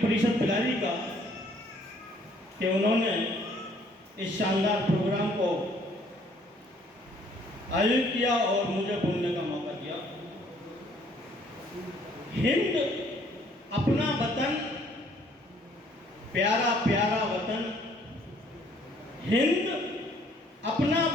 परिषद बिलारी का कि उन्होंने इस शानदार प्रोग्राम को आयोजित किया और मुझे बोलने का मौका दिया। हिंद अपना वतन, प्यारा प्यारा वतन, हिंद अपना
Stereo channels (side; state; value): both; normal; correlation 0.62